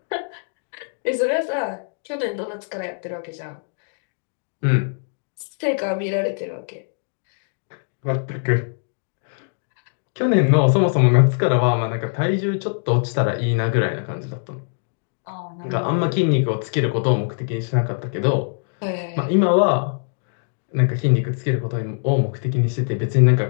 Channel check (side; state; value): right; silent; digital silence